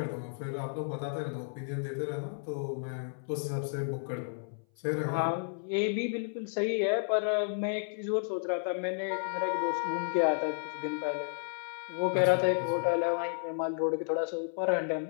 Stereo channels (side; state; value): right; silent; 56 dB below the other